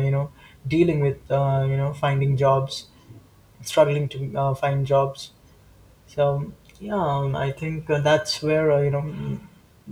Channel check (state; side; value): identical; both; correlation 1.00